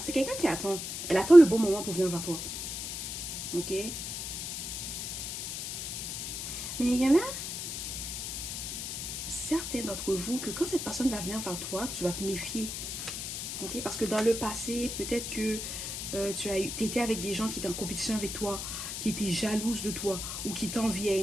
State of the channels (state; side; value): noise; left; hiss, 5 dB below the sound